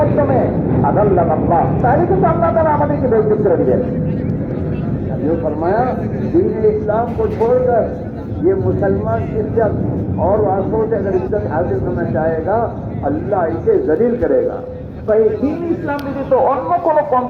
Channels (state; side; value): identical; both; correlation 1.00